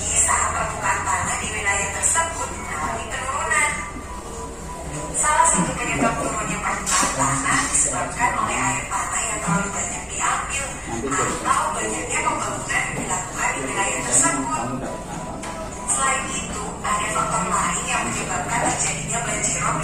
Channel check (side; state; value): both; identical; correlation 1.00